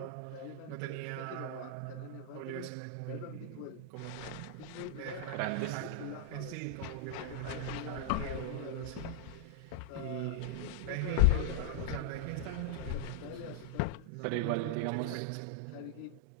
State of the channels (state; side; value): different; both; correlation -0.01